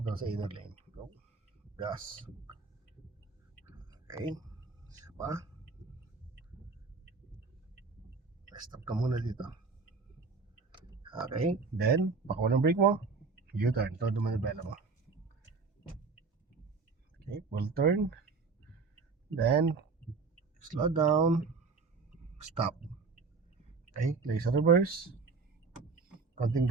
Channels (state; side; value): quieter; left; 4.5 dB